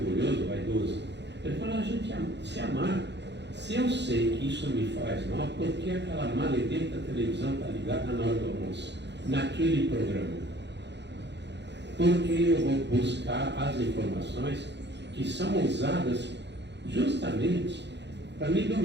vaidoso. Eu estou falando de a gente se amar. Se eu sei que isso me faz mal, por que aquela maledita televisão está ligada na hora do almoço? Naquele programa. Porque eu vou buscar as informações que são usadas justamente para me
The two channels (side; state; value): left; late; 0.51 ms